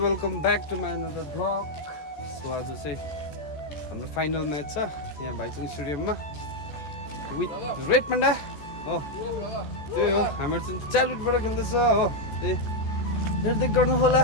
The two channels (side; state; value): right; late; 14 ms